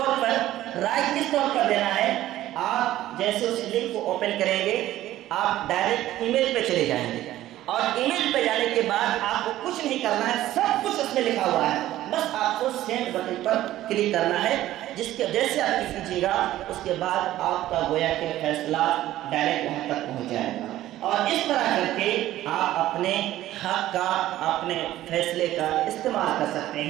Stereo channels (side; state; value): left; quieter; 14.3 dB